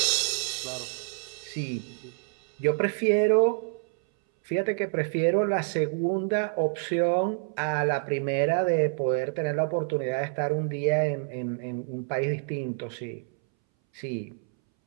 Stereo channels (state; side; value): silent; left; 60 dB below the other